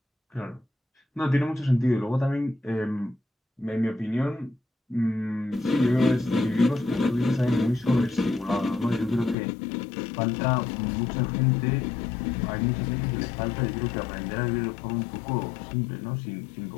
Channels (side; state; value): right; drops out; at 9.3 s